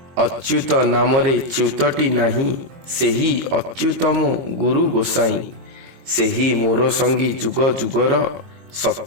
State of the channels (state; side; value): late; left; 23 ms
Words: अच्युत नामरे च्युतटी नाही, सेही अच्युतम गुरु गोसाई, सेही मोर संगी जुग जुगर,